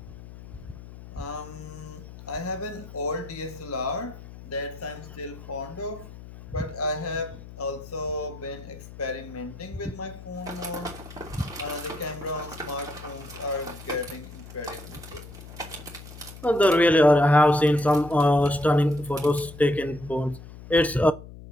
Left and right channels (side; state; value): left; noise; hum, 15 dB below the sound